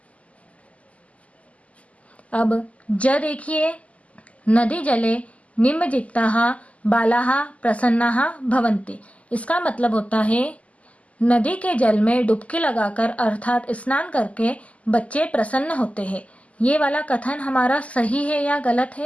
अब ज देखिए, नदी जले निमज्जिताः बालाः प्रसन्नाः भवन्ति। इसका मतलब होता है नदी के जल में डुबकी लगाकर अर्थात स्नान करके बच्चे प्रसन्न होते हैं। ये वाला कथन हमारा सही है या गलत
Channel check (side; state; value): right; late; 0.068 ms